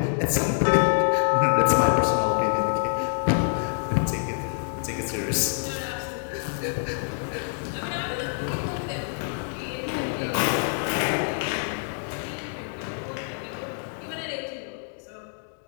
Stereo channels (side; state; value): right; silent; digital silence